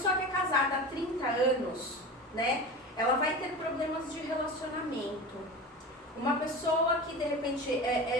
que é casada há 30 anos, né, ela vai ter problemas de relacionamento. Uma pessoa que, de repente,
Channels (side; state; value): both; normal; correlation 0.30